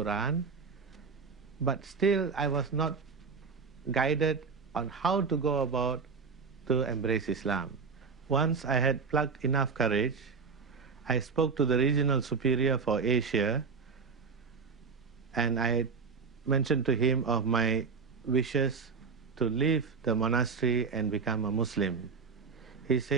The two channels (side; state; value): left; quieter; 5.2 dB